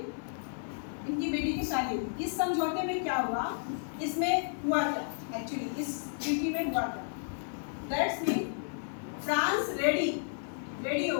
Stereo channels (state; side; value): silent; right; digital silence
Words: इनकी बेटी की शादी हुई इस समझौते में क्या हुआ इसमें हुआ क्या एक्चुअली इस ट्रीटी में हुआ क्या दैट्स मीन फ्रांस रेडी हो